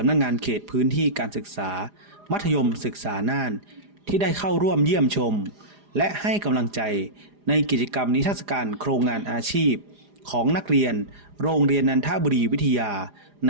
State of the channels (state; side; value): late; left; 4.9 ms